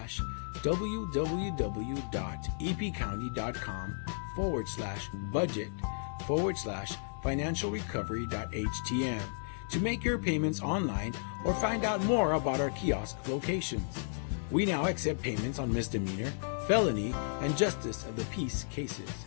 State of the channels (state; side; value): silent; right; digital silence